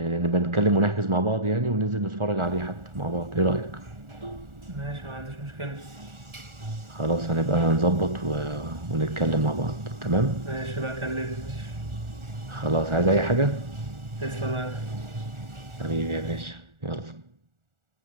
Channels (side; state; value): left; late; 1.4 ms